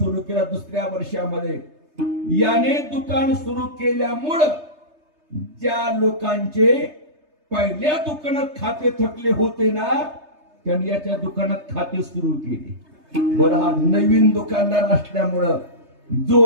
केलं. दुसऱ्या वर्षामध्ये याने दुकान सुरू केल्यामुळं ज्या लोकांचे पहिल्या दुकानात खाते थकले होते ना, त्यांनी याच्या दुकानात खाते सुरू केले. बरं, हा नवीन दुकानदार असल्यामुळं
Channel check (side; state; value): left; late; 3.3 ms